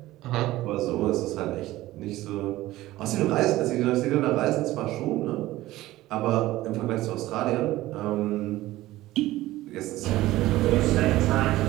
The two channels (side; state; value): left; quieter; 16.6 dB